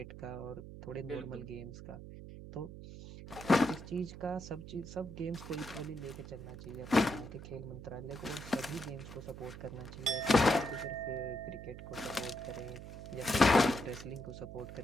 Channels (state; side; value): noise; right; hum, 12 dB below the sound